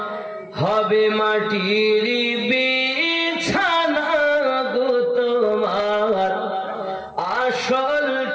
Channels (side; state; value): both; identical; correlation 1.00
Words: হবে মাটির বিছানা গো তোমার আসল